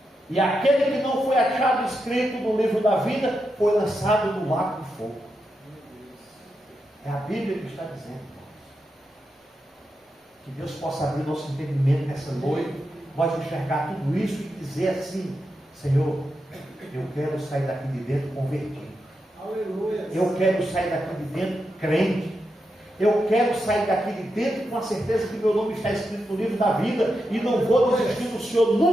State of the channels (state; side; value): normal; both; correlation 0.86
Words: E aquele que não foi achado escrito no livro da vida, foi lançado no lago de fogo. É a Bíblia que está dizendo. Que Deus possa abrir nosso entendimento nessa noite, nós enxergar tudo isso e dizer assim: Senhor, eu quero sair daqui de dentro convertido. Aleluia. Eu quero sair daqui de dentro crente. Eu quero sair daqui de dentro com a certeza que meu nome está escrito no livro da vida e não vou desistir do Senhor